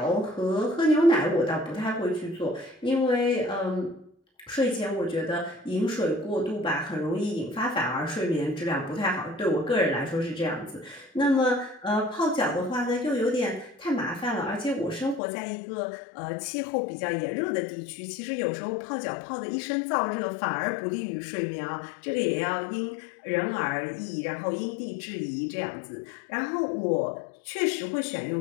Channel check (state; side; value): drops out; right; at 15.2 s